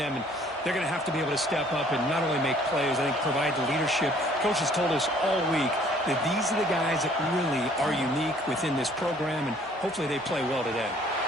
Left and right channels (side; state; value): both; normal; correlation 0.58